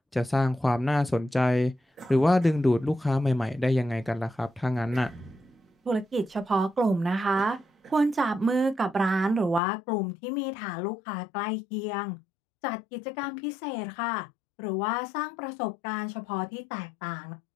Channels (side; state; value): right; drops out; at 9.6 s